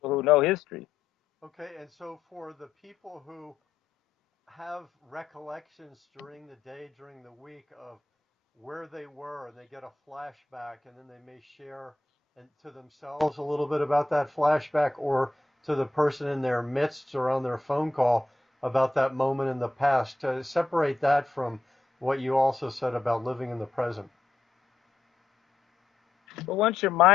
who know history. okay. And so, for the people who have recollections during the day, during the week of where they were, and they get a flashback, and then they may share and to themselves a little bit about that flashback, or to the person in their midst or on their phone call about that moment in the past. To separate that from what you also said about living in the present. But once your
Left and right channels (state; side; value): quieter; right; 3.1 dB